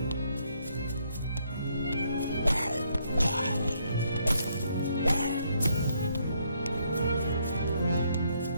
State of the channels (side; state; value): both; inverted; correlation -0.72